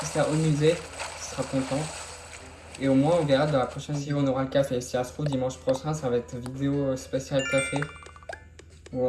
ça au musée. Il sera content. Et au moins, on verra dans la prochaine vidéo, on aura le café. Si ça se trouve, dimanche prochain, ça va être vidéo spéciale café.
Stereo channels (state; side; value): identical; both; correlation 1.00